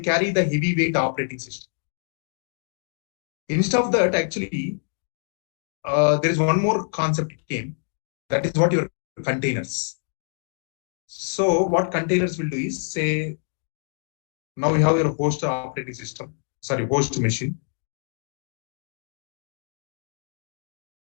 the heavyweight operating system. Instead of that, actually, there is one more concept came. That is what your containers. So what containers will do is, say, now you have your host operating system, sorry, host machine.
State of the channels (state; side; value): silent; right; digital silence